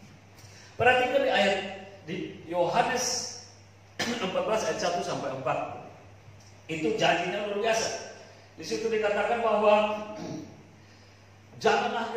Perhatikan di ayat di Yohanes 14 ayat 1 sampai 4. Itu janjinya luar biasa. Di situ dikatakan bahwa janganlah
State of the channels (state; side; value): identical; both; correlation 1.00